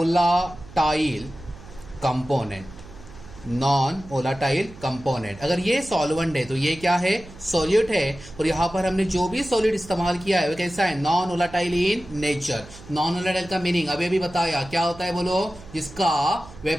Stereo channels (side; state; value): right; noise; hum, 18 dB below the sound